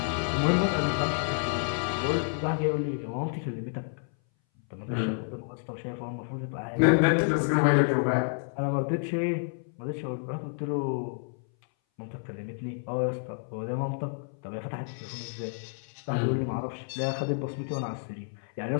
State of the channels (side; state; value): right; silent; 58 dB below the other